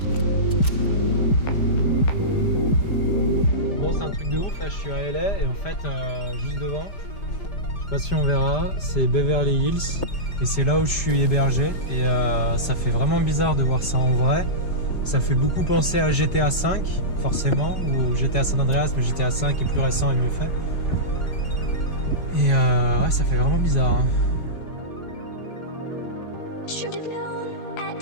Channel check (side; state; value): right; late; 5.0 ms